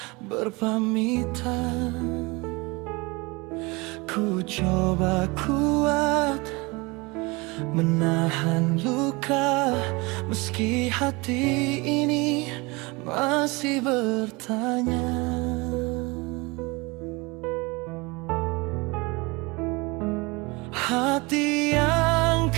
berpamitan. Ku coba kuat menahan luka, meski hati ini masih bertanya. Hati yang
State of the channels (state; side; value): quieter; left; 25.6 dB